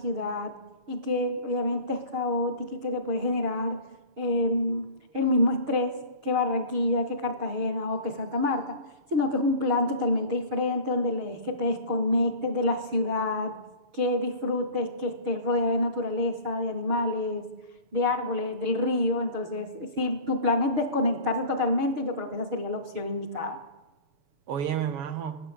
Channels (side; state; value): left; late; 6.4 ms